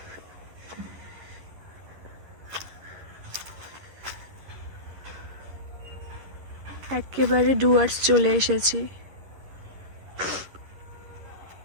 একেবারে ডুয়ার্স চলে এসেছি।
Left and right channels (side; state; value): left; late; 11 ms